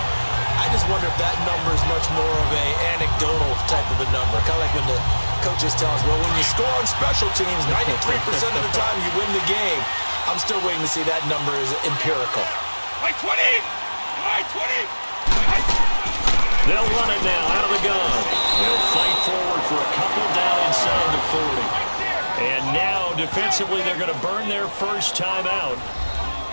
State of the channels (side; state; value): both; inverted; correlation -1.00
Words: I just wonder if that number is much more of a anecdotal type of a number. Kind of like when the coaches tell us, well, when you score on special teams, 93% of the time you win the game. I'm still waiting to see that number is empirical. By 20! By 20! They'll run it now out of the gun. They'll fight forward for a couple down inside the 40. And now, defensively, they're going to burn their first time out.